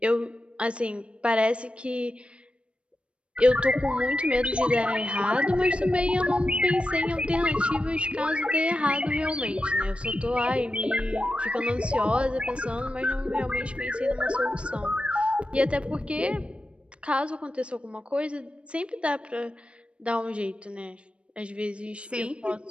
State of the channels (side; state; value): left; late; 0.059 ms